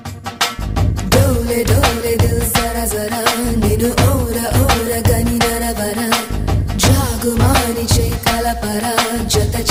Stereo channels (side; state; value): both; identical; correlation 1.00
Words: डोले दिल जरा जरा निनु ओरा ओरा गनी नरवरा जागुमानी चे कलपरा जत